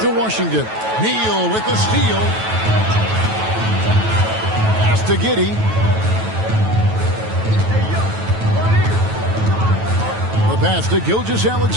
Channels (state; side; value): late; left; 9.2 ms